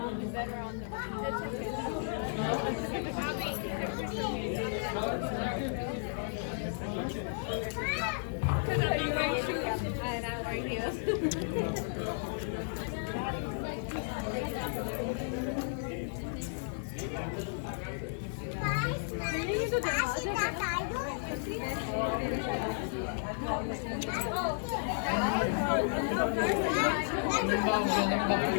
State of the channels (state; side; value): silent; right; digital silence